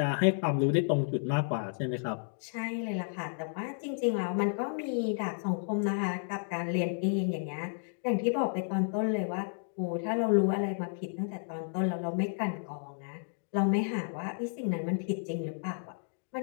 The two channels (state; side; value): silent; right; digital silence